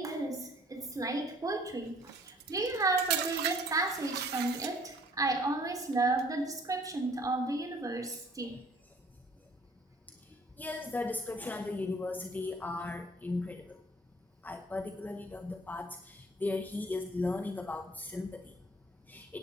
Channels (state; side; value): normal; both; correlation 0.56